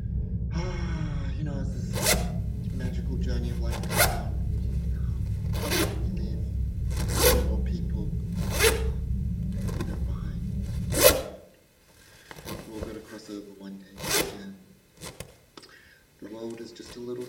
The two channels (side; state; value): both; identical; correlation 1.00